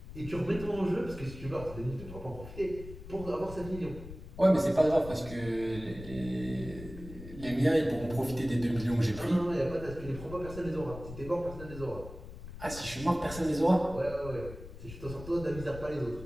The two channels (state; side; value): noise; left; rumble, 13 dB below the sound